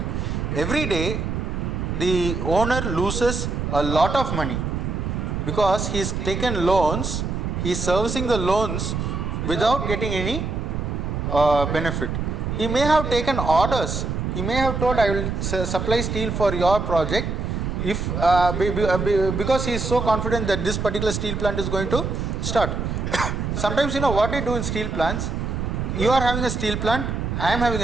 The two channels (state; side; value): noise; right; rumble, 2 dB below the sound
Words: every day the owner loses a lot of money because he's taken loans, he's servicing the loans without getting any benefit. He may have taken orders, he may have told I will supply steel for your project if because he is so confident that this particular steel plant is going to start. Sometimes what they do in steel plants, you are having a steel plant, I am having